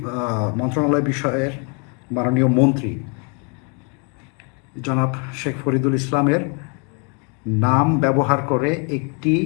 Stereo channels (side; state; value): right; quieter; 36.2 dB